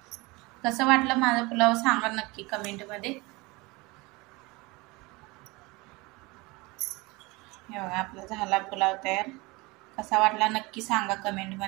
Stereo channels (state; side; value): quieter; left; 24.3 dB